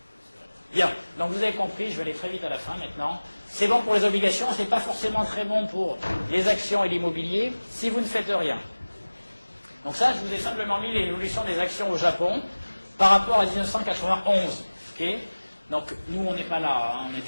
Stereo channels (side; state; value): both; inverted; correlation -1.00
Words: Bien. Donc vous avez compris, je vais aller très vite à la fin maintenant. C'est bon pour les obligations, c'est pas forcément très bon pour les actions et l'immobilier si vous ne faites rien. Donc ça, je vous ai simplement mis l'évolution des actions au Japon par rapport à 1991. Okay, donc nous, on n'est pas là, hein, on